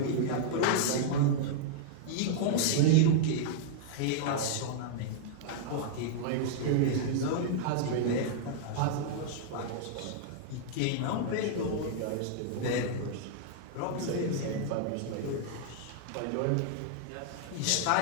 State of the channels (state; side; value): different; both; correlation -0.01